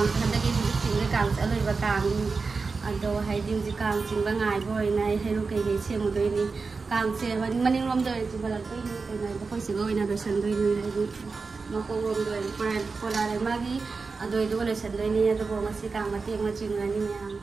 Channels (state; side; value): quieter; left; 4.4 dB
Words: हंदगी चिंग कांग अलोइबा कांग अदो हाइदि जि कांग चिंगबा ngai बोय नाय हेरु के गे सेमदोय नि कांग से मनिंग रोम दोय चिबला कोइ नि कोइ नाय कोइ सिगोय ना दोसन दोय नि हाइदि मको रोम दोय पोलारे मागी अदोय दो लेसन दोय नि अदो ngasi कांग मते म चिंगani म्याम